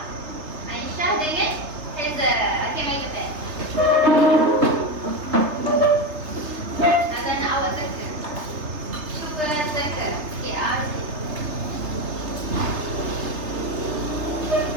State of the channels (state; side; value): late; left; 3.3 ms